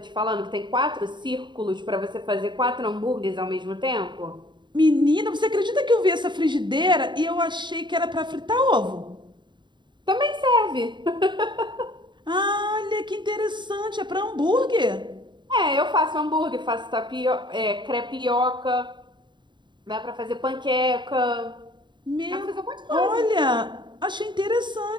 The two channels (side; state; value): left; late; 0.22 ms